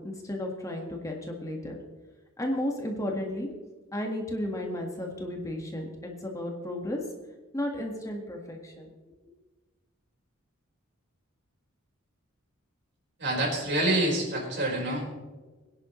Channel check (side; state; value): both; normal; correlation 0.41